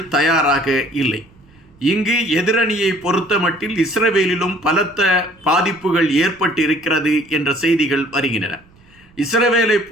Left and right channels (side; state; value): right; noise; rumble, 29 dB below the sound